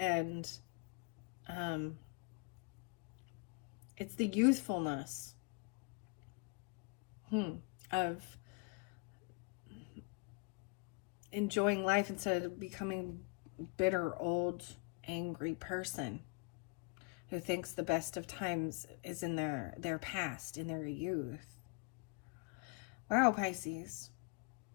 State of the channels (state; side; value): quieter; right; 31.8 dB